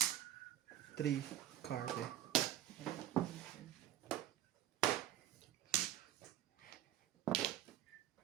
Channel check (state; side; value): quieter; left; 12.7 dB